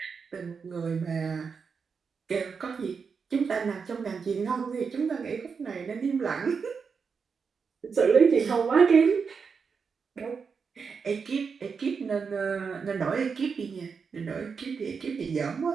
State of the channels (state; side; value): quieter; left; 5.7 dB